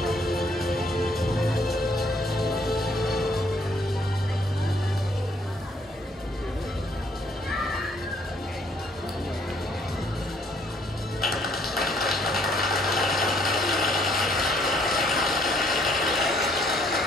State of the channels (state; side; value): normal; both; correlation 0.66